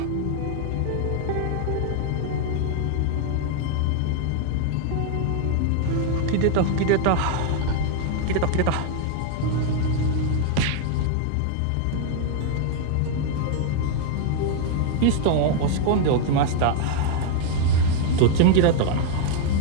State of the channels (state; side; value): different; both; correlation 0.00